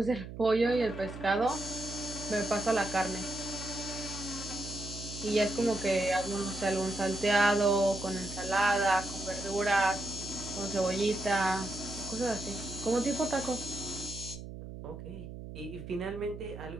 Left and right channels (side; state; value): right; noise; hum, 11 dB below the sound